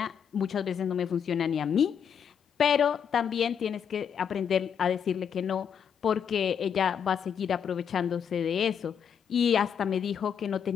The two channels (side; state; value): right; quieter; 7.7 dB